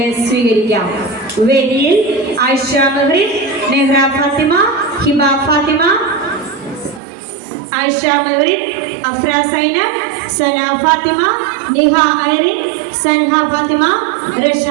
വേദിയിൽ ആയിഷ മെഹറിൻ, നെഹ്റ ഫാത്തിമ, ഹിബ ഫാത്തിമ, ആയിഷ മെഹറിൻ, അഫ്ര സൈനബ്, സന ഫാത്തിമ, നിഹ ഐറിൻ, സൻഹ ഫാത്തിമ, റഷ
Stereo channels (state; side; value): drops out; left; at 7.0 s